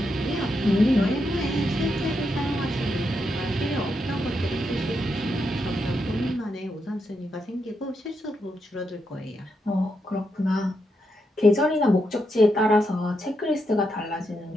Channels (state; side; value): normal; both; correlation 0.82